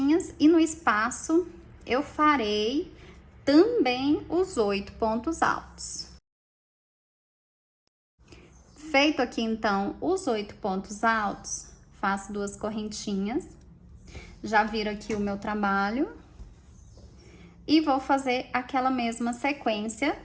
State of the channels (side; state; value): both; identical; correlation 1.00